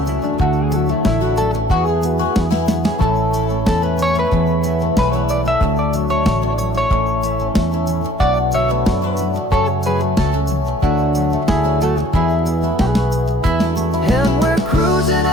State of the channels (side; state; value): both; normal; correlation 0.58